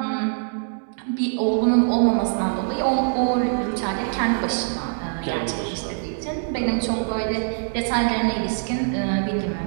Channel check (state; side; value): silent; left; 63 dB below the other